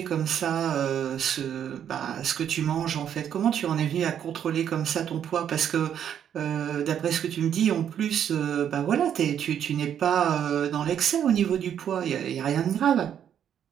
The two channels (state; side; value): quieter; left; 9.2 dB